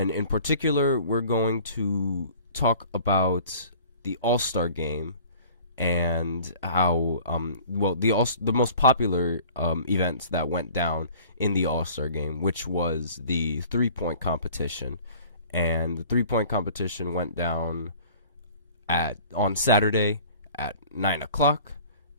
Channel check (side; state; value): both; inverted; correlation -0.49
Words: in particular, we're going to talk about the All-Star Game and how, the most popular events that went down in the All-Star Game, which was the three-point competition. And the three-point competition went down on Saturday at 9 o'clock,